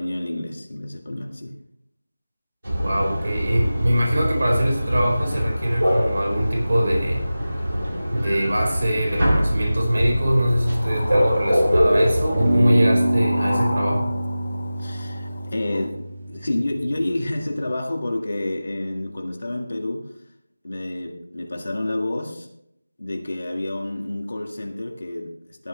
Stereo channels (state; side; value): inverted; both; correlation -0.96